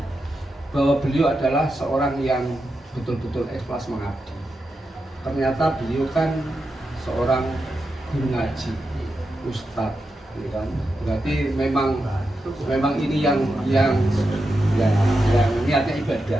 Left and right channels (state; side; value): normal; both; correlation 0.88